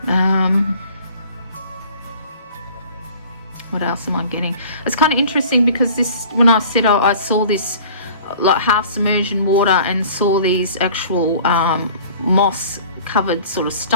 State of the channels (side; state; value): both; inverted; correlation -0.47